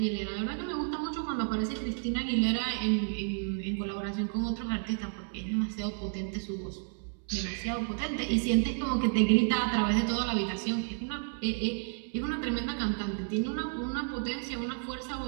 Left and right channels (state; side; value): silent; left; 57 dB below the other